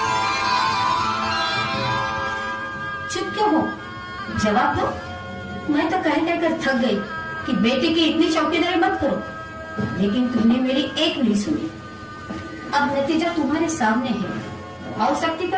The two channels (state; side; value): identical; both; correlation 1.00